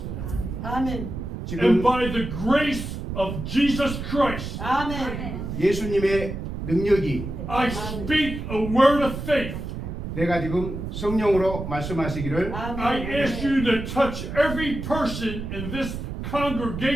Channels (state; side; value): noise; right; rumble, 6 dB below the sound